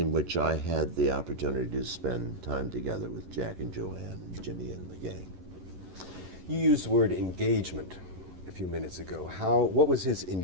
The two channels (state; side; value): late; left; 11 ms